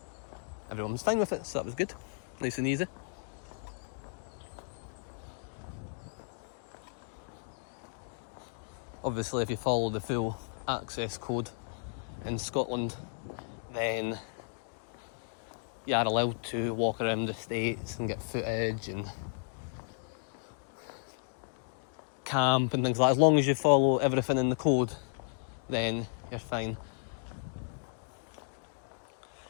everyone was fine with it, so that was good, nice and easy. Obviously if you follow the full access code in Scotland, then you are allowed to walk around the estates and get footage and camp and things like that. As long as you follow everything in the code, then you're fine.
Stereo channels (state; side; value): silent; right; digital silence